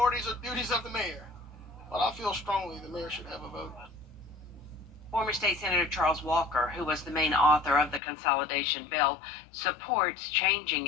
or duties of the mayor. But I feel strongly the mayor should have a vote. Former State Senator Charles Walker, who was the main author of the consolidation bill, supports changing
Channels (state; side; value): drops out; right; at 8.0 s